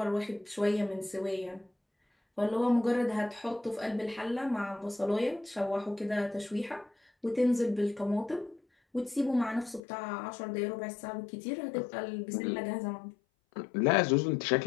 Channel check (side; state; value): right; drops out; at 9.8 s